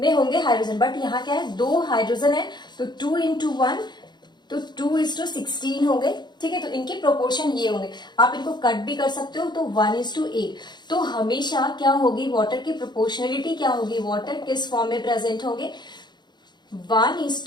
होंगे हाइड्रोजन, बट यहाँ क्या है, 2 हाइड्रोजन है तो 2 into 1, तो 2:16 हो गए। ठीक है, तो इनके प्रोपोर्शन ये होंगे। आप इनको कट भी कर सकते हो, तो 1:8। तो हमेशा क्या होगी, वाटर की प्रोपोर्शनलिटी क्या होगी, वाटर किस फॉर्म में प्रेजेंट होंगे,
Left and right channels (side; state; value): right; late; 0.21 ms